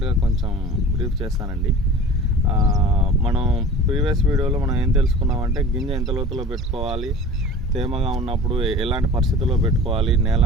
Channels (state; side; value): normal; both; correlation 0.40